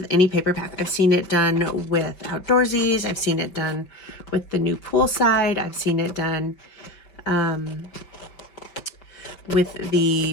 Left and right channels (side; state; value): right; late; 5.2 ms